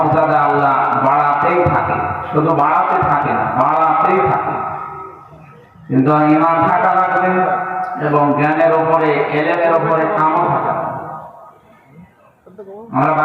আল্লাহ বাড়াতেই থাকে, শুধু বাড়াতে থাকে না, বাড়াতেই থাকে। কিন্তু ঈমান থাকা লাগবে এবং জ্ঞানের উপরে, ইলমের উপরে আমল থাকা। আমরা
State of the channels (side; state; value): both; identical; correlation 1.00